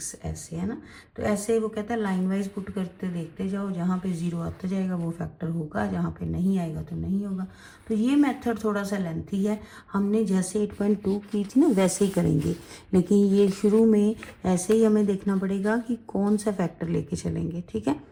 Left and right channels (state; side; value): identical; both; correlation 1.00